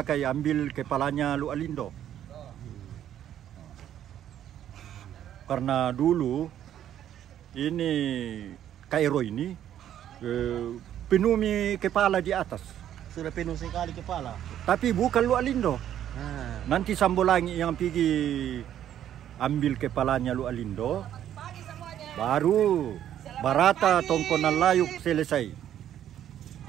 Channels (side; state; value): left; quieter; 10.8 dB